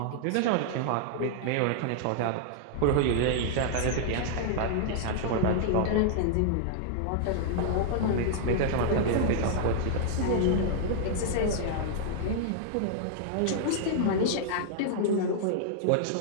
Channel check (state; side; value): different; both; correlation -0.01